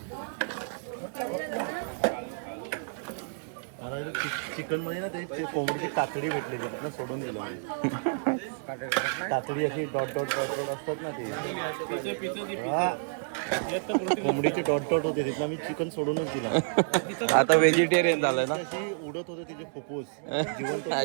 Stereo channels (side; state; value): left; silent; digital silence